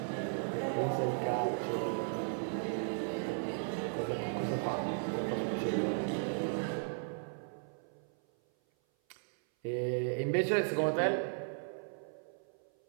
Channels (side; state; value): left; silent; 54 dB below the other